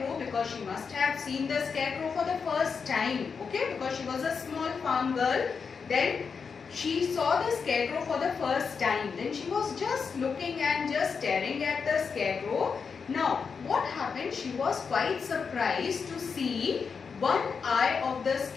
because she must have seen the scarecrow for the first time, okay, because she was a small farm girl, then she saw the scarecrow for the first time. Then she was just looking and just staring at the scarecrow. Now what happened? She was quite surprised to see one eye of the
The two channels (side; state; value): right; quieter; 5.7 dB